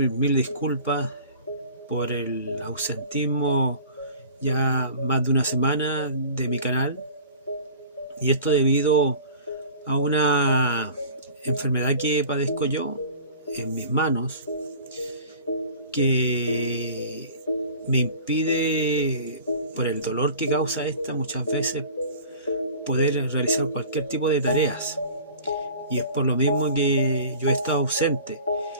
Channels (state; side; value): inverted; both; correlation -0.43